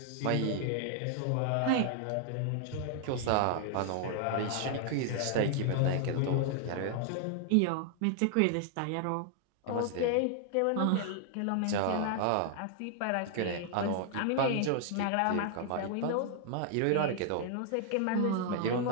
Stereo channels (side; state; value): both; different; correlation 0.00